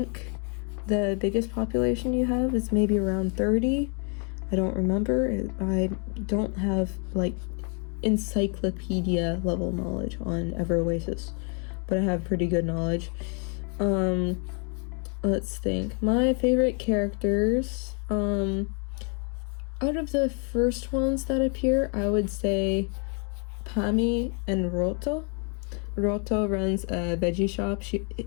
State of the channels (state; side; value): quieter; right; 38.6 dB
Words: the biggest population you have is maybe around 30. I don't remember. I don't have like encyclopedia level knowledge on Oasis, but I have pretty good knowledge. Let's think. My favorite characters, out of the first ones that appear, I would say Pami and Roto. Roto runs a veggie shop.